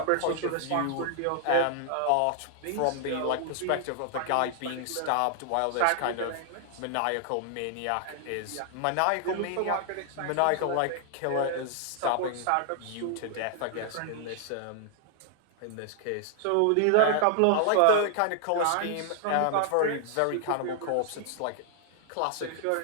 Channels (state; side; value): different; both; correlation 0.00